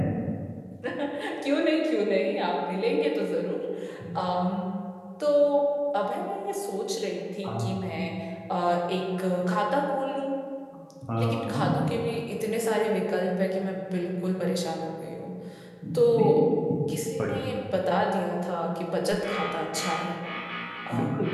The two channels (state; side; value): identical; both; correlation 1.00